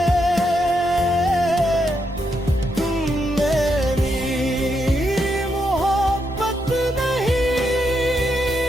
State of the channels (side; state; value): both; normal; correlation 0.81